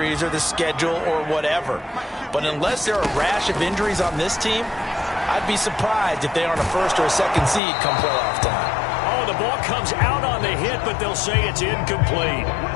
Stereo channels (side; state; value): right; drops out; at 7.6 s